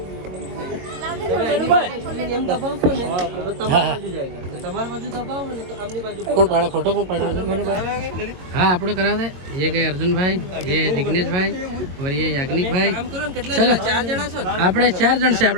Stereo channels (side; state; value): left; late; 22 ms